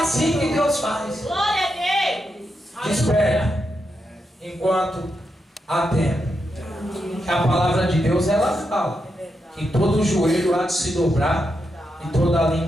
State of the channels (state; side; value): normal; both; correlation 0.84